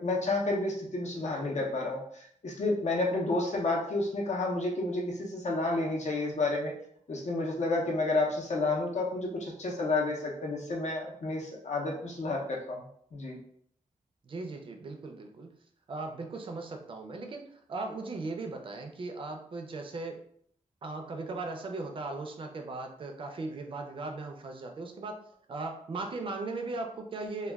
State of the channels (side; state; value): both; normal; correlation 0.57